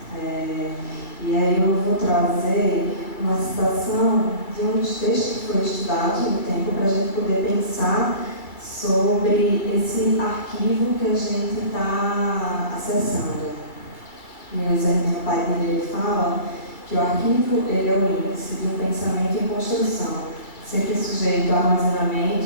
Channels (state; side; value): late; right; 2.2 ms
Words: E aí eu vou trazer uma citação de um dos textos que foi estudado no tempo para a gente poder pensar sobre esse arquivo que a gente está acessando. Meu Zé Padilha fala que o arquivo ele é o índice de um pensamento em construção, sempre sujeito a